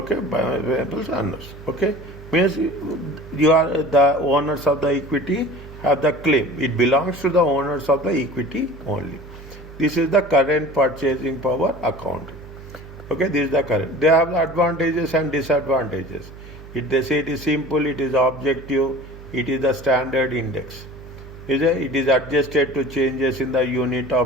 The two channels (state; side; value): noise; right; hum, 16 dB below the sound